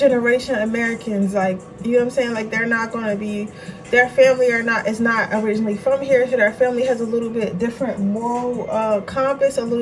Americans. Like, you know what I'm saying? Like, they're not going to be, their family is not originally from here, so their family has a little bit different moral compass, a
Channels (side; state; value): both; identical; correlation 1.00